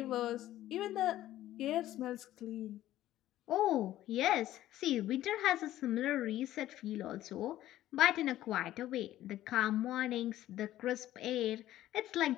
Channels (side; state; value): right; quieter; 13.9 dB